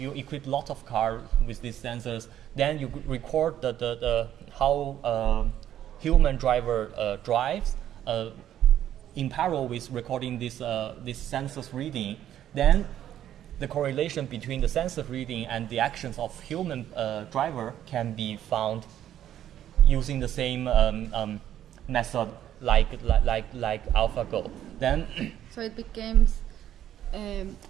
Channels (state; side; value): quieter; left; 11.2 dB